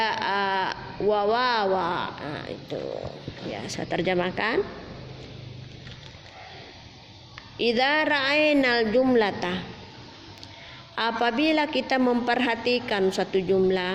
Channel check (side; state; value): both; identical; correlation 1.00